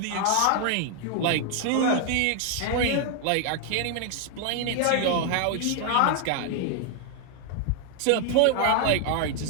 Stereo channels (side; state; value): both; different; correlation 0.00